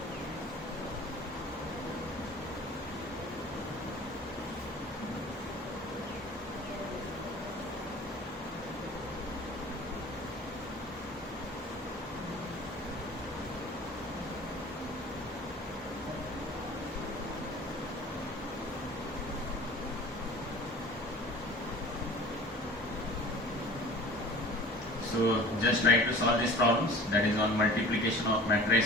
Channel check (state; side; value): normal; both; correlation 0.43